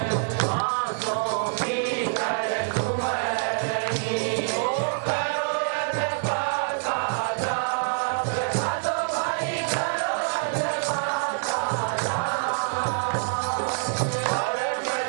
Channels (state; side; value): silent; left; digital silence